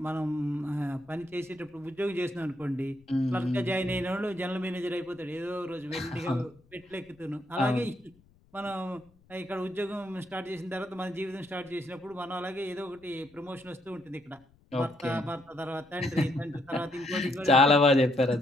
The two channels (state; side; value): noise; left; rumble, 30 dB below the sound